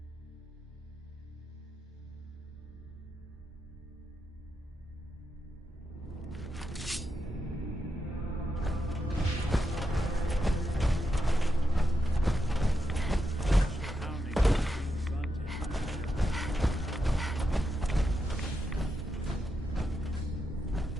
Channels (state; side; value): normal; both; correlation 0.85